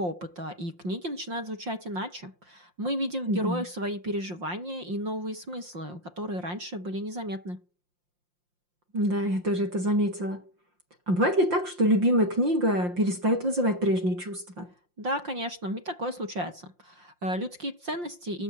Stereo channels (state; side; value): late; left; 5.7 ms